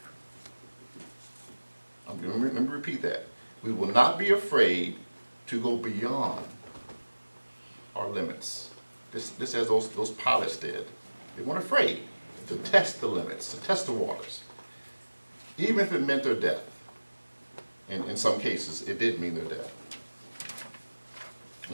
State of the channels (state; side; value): inverted; both; correlation -1.00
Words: Let me repeat that. We will not be afraid to go beyond our limits. This as those pilots did. They weren't afraid to test the limits, to test the waters, even if it meant their death. And in some cases, it did mean their death.